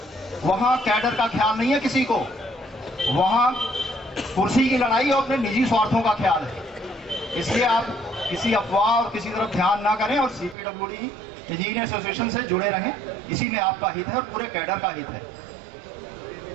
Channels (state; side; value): drops out; left; at 10.6 s